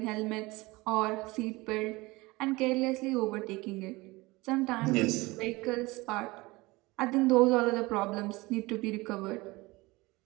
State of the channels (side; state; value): left; quieter; 22.3 dB